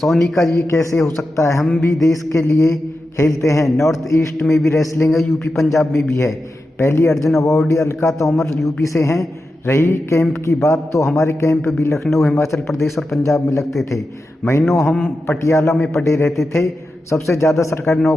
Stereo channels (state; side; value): normal; both; correlation 0.91